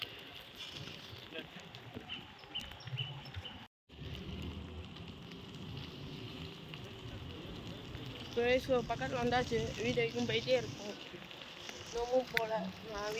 ஸோ பக்கத்தில் வந்தாச்சு. வீடியோக்கும் போயிட்டே இருக்கும். இன்னமும் போகல. நான்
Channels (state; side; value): identical; both; correlation 1.00